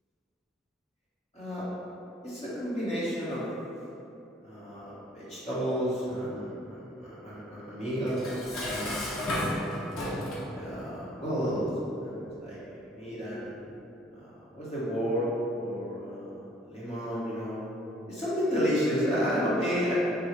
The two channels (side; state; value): both; normal; correlation 0.58